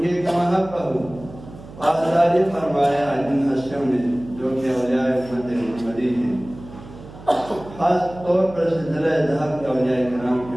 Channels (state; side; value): noise; right; hum, 17 dB below the sound